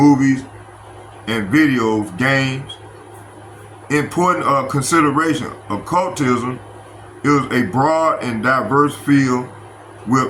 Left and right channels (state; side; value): identical; both; correlation 1.00